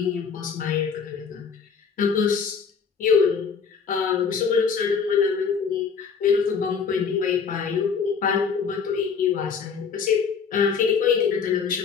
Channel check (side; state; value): right; quieter; 6.0 dB